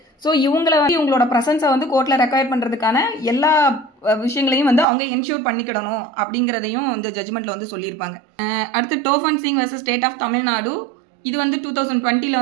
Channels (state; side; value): drops out; left; at 4.9 s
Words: ஸோ இவங்களை வந்து இவங்களோட ப்ரெசன்ஸை வந்து கோர்ட்டில் ரெக்வயர் பண்ணுறதுக்கான எல்லா விஷயங்களையும் வந்து அவங்க என்ஷூர் பண்ணிக்கிடணும் அப்படிங்கிறதையும் இந்த ஜட்ஜ்மெண்ட்டில் வந்து சொல்லியிருப்பாங்க. அடுத்து Tofan Singh versus state of Tamil Nadu. இது வந்து 2020